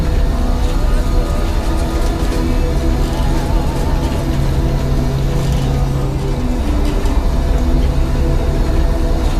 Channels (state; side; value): identical; both; correlation 1.00